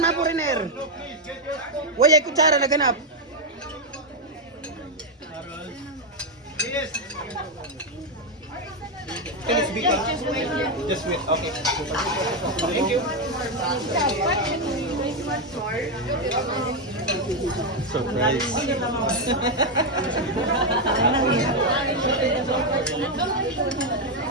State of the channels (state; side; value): normal; both; correlation 0.04